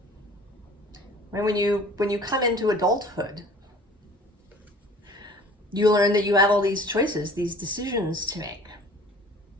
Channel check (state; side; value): normal; both; correlation 0.48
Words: When you come into adulthood, you learn that you have all these choices, these decisions to make.